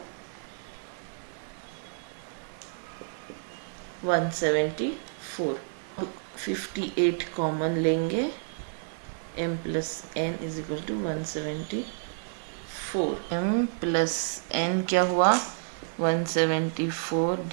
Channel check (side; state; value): left; silent; digital silence